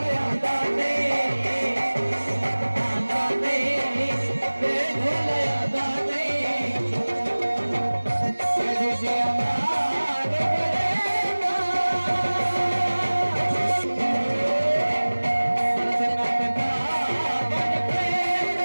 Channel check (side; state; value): both; inverted; correlation -1.00